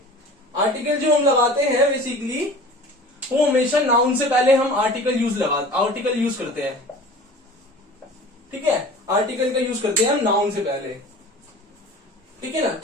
आर्टिकल जो हम लगाते हैं बेसिकली वो हमेशा नाउन से पहले हम आर्टिकल यूज करते हैं। ठीक है, आर्टिकल का यूज करते हैं हम नाउन से पहले। ठीक है ना,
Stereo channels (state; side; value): normal; both; correlation 0.41